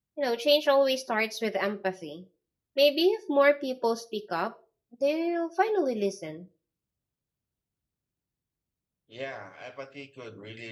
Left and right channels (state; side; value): identical; both; correlation 1.00